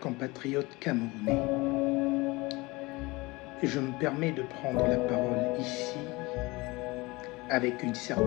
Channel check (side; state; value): right; quieter; 23.2 dB